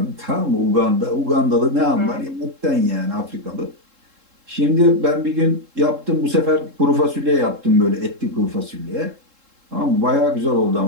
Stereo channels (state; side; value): late; left; 3.7 ms